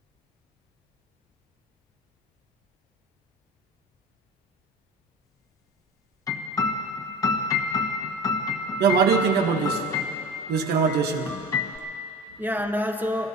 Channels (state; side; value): normal; both; correlation 0.34